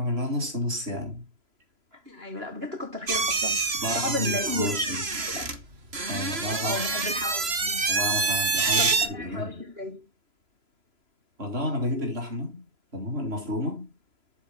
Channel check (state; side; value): late; left; 3.0 ms